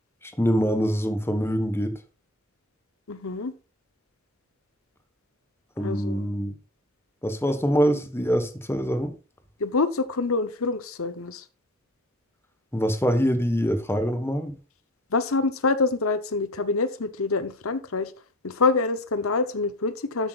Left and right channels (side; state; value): both; normal; correlation 0.40